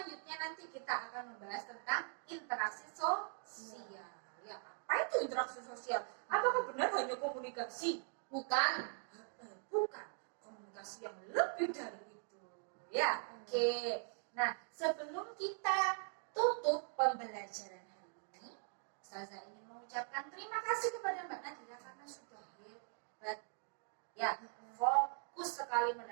nanti kita akan membahas tentang interaksi sosial. Ya, apa itu interaksi sosial? Apakah benar hanya komunikasi? Bukan. Bukan. Komunikasi yang lebih dari itu. Ya, oke. Nah, sebelum kita tutup pembelajaran hari ini, Ustazah ingin mengucapkan terima kasih kepada Mbak Nadia karena sudah hebat. Ya, fokus sekali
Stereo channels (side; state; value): left; silent; 50 dB below the other